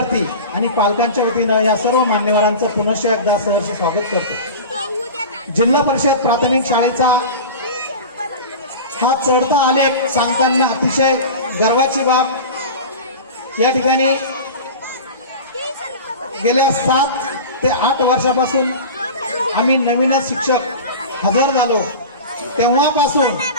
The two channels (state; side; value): inverted; both; correlation -0.31